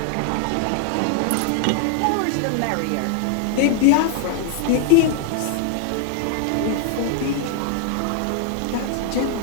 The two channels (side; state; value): both; different; correlation 0.00